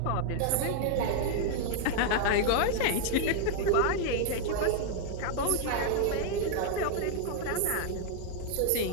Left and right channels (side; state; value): both; different; correlation 0.00